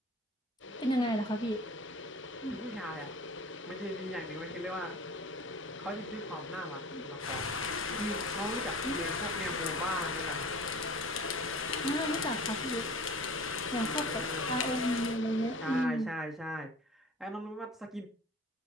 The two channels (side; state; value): both; normal; correlation 0.41